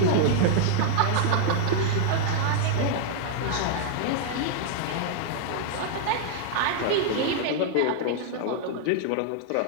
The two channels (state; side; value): different; both; correlation -0.01